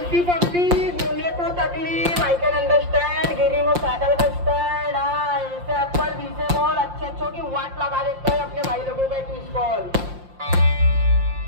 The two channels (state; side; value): late; left; 5.7 ms